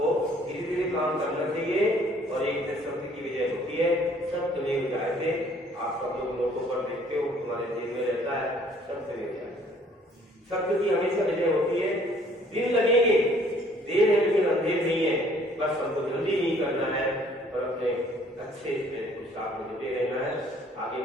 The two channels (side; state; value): both; normal; correlation 0.59